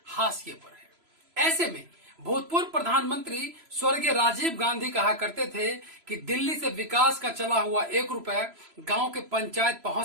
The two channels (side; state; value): left; late; 3.0 ms